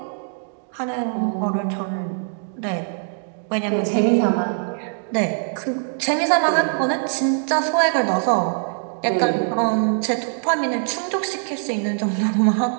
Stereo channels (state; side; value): silent; left; digital silence